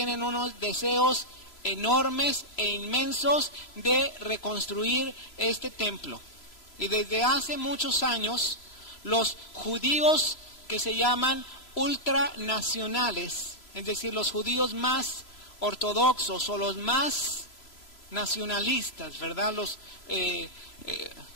unos deseos enormes e inmensos de reconstruir este templo. Y desde hace muchos años, los judíos que se llaman ultranacionales, es decir, los judíos más ortodoxos o los más nacionalistas, ¿verdad?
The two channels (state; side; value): late; right; 3.0 ms